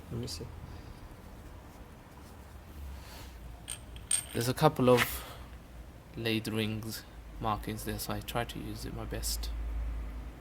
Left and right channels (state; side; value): identical; both; correlation 1.00